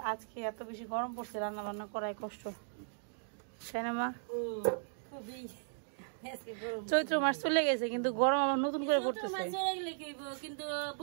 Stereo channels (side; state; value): left; silent; digital silence